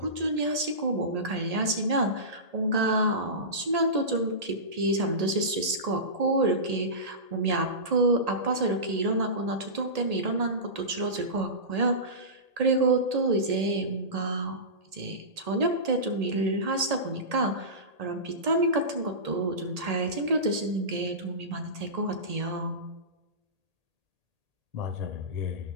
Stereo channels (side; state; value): left; late; 1.8 ms